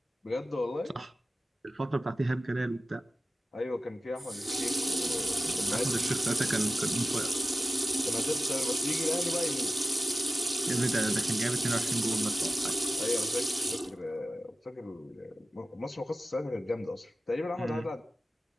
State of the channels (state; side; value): normal; both; correlation 0.94